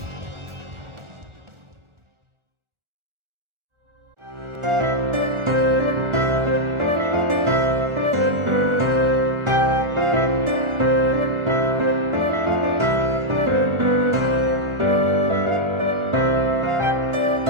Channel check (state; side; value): late; left; 1.4 ms